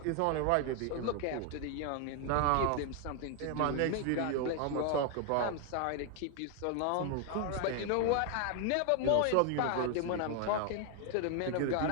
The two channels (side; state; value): both; different; correlation 0.01